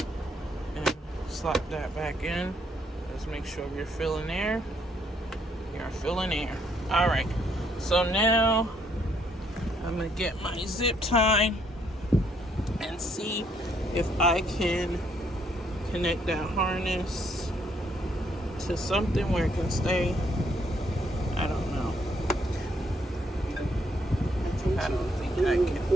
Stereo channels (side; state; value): both; normal; correlation 0.70